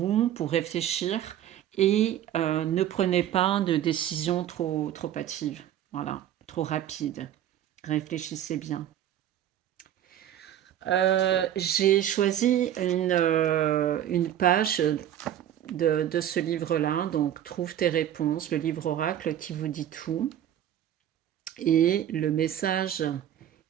pour réfléchir et ne prenez pas de décisions trop hâtives. Voilà, trop rapides. Réfléchissez bien. J'ai choisi une page de ce livre-là, donc Trouve tes réponses, le livre oracle qui vous dit tout. Et le message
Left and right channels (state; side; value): quieter; left; 11.1 dB